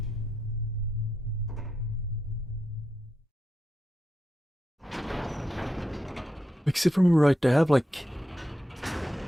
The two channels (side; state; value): both; normal; correlation 0.85